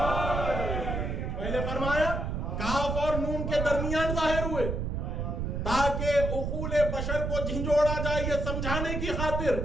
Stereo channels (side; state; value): right; noise; rumble, 2 dB below the sound